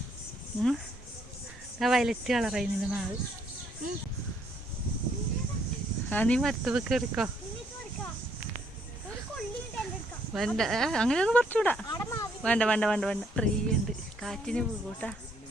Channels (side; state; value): both; normal; correlation 0.69